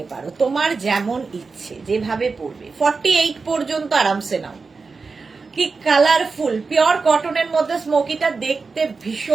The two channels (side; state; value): left; quieter; 4.5 dB